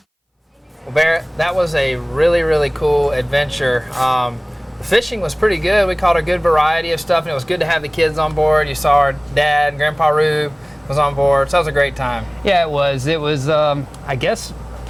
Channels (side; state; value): both; identical; correlation 1.00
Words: Well, Barrett, that was a really, really cool adventure. The fishing was pretty good. We caught a good variety of stuff, and it was good to have the kids on board. You saw our dad and Grandpa Rube was on board, so that was a great time. Yeah, it was. It was, I guess,